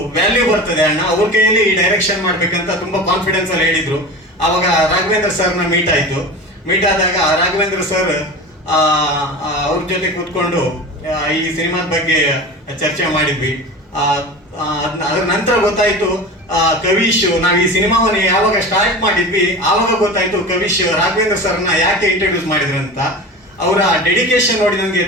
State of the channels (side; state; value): both; normal; correlation 0.31